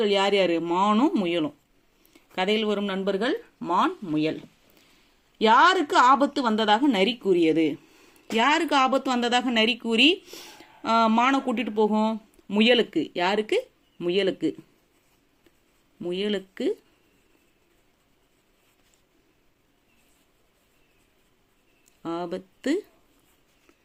யார் யாரு? மானும் முயலும். கதையில் வரும் நண்பர்கள் மான், முயல். யாருக்கு ஆபத்து வந்ததாக நரி கூறியது? யாருக்கு ஆபத்து வந்ததாக நரி கூறி மானை கூட்டிட்டு போகும்? முயலுக்கு. யாருக்கு? முயலுக்கு. முயலுக்கு ஆபத்து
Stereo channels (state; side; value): identical; both; correlation 1.00